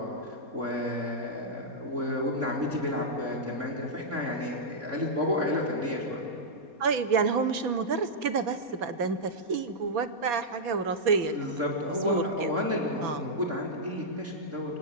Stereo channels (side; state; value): left; late; 4.2 ms